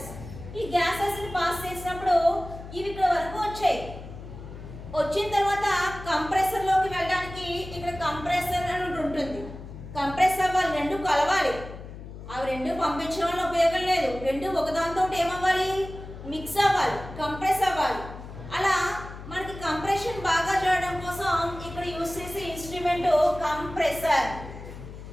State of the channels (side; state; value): left; noise; hum, 13 dB below the sound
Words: ఈ గ్యాసెస్ని పాస్ చేసినప్పుడు ఇవి ఇక్కడ వరకు వచ్చాయి. వచ్చిన తర్వాత కంప్రెసర్లోకి వెళ్ళడానికి ఇక్కడ కంప్రెసర్ అని ఉంటుంది. కంప్రెస్ అవ్వాలి, రెండు కలవాలి. అవి రెండు పంపించడం వల్ల ఉపయోగం లేదు. రెండు ఒకదానితో ఏమవ్వాలి, మిక్స్ అవ్వాలి, కంప్రెస్ అవ్వాలి. అలా మనకి కంప్రెషన్ బాగా చేయడం కోసం ఇక్కడ యూజ్ చేసే ఇన్స్ట్రుమెంట్ కంప్రెసర్.